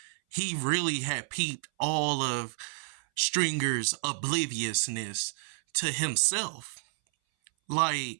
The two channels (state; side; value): silent; left; 58 dB below the other